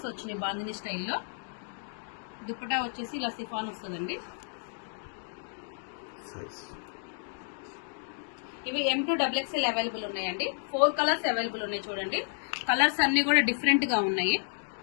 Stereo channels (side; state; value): right; silent; digital silence